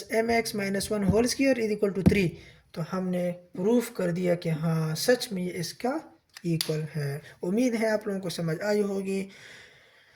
mx minus 1 whole square is equal to 3, तो हमने प्रूफ कर दिया कि हाँ सच में ये इसका इक्वल है। उम्मीद है आप लोगों को समझ आई होगी।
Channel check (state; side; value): identical; both; correlation 1.00